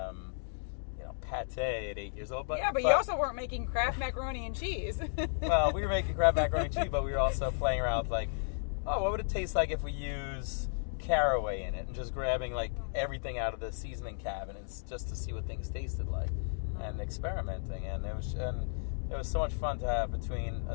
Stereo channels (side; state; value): right; silent; digital silence